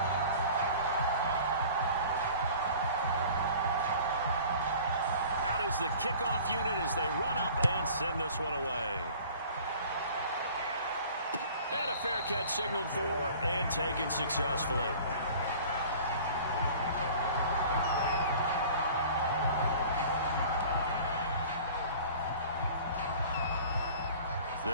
The kickoff unit as they run up and send this one away. And a fair catch signaled for and taken successfully.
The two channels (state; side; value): inverted; both; correlation -0.46